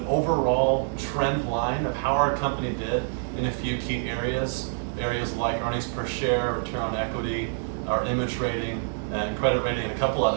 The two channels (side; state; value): left; silent; digital silence